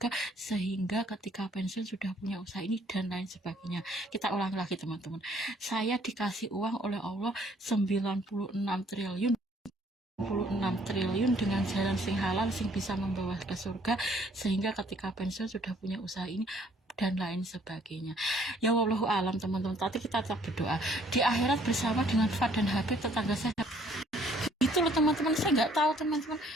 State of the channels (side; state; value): both; normal; correlation 0.62